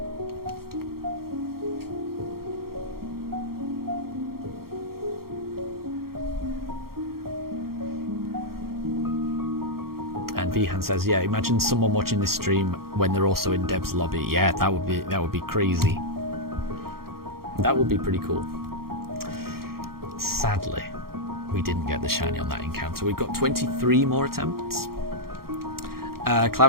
And Vihan says, yeah, imagine someone watching this stream when they're also in Deb's lobby. Yeah, that would be crazy. That would be pretty cool. Sadly, we didn't get the shiny on that encounter. We've got 23 more attempts.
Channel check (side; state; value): left; late; 0.93 ms